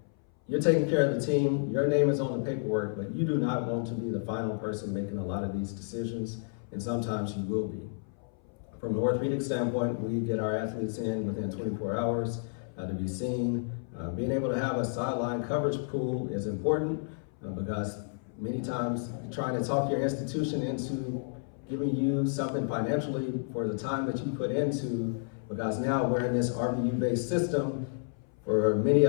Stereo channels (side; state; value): right; silent; 57 dB below the other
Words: you're taking care of the team, your name is on the paperwork, but you do not want to be the final person making a lot of these decisions, and sometimes you will be. From an orthopedic standpoint, we get our athletes in within 24 hours to be seen. Being able to have a sideline coverage pool is important because many times trying to talk your institution into giving you something financially for the time that you put into, because now we're in this RVU-based system. For many